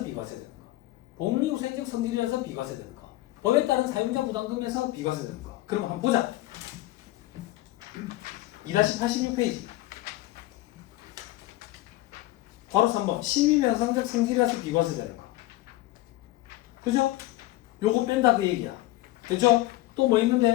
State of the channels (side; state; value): right; quieter; 17.3 dB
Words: 비과세 되는 거, 복리후생적 성질이라서 비과세 되는 거, 법에 따른 사용자 부담금에서 비과세 되는 거. 그럼 한번 보자. 2-86페이지. 바로 3번. 실비배상적 성질이라서 비과세 되는 거. 그죠? 요거 뺀다 그 얘기야. 됐죠? 또 뭐